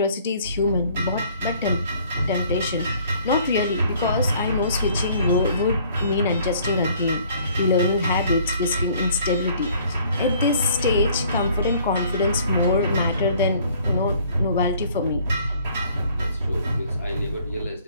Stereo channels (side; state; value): both; inverted; correlation -0.57